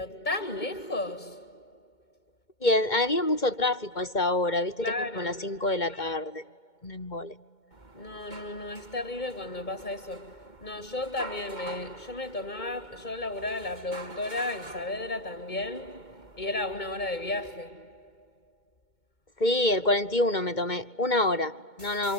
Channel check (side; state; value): right; late; 2.2 ms